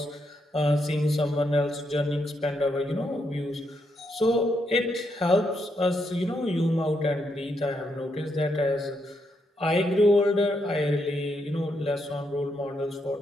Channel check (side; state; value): both; normal; correlation 0.79